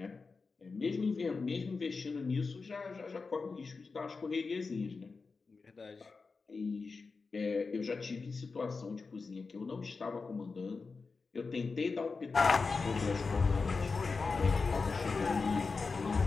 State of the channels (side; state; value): right; quieter; 4.4 dB